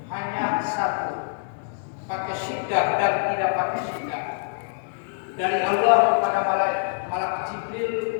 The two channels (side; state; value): right; silent; 62 dB below the other